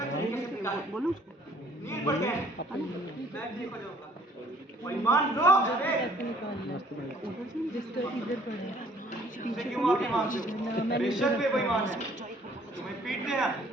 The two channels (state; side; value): normal; both; correlation 0.58